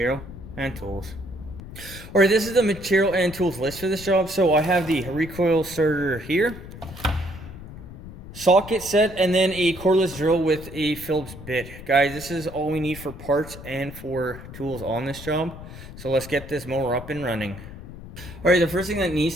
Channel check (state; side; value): noise; left; rumble, 14 dB below the sound